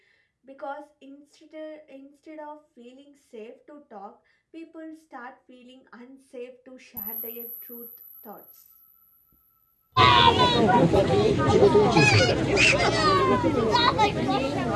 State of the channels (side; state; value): both; identical; correlation 1.00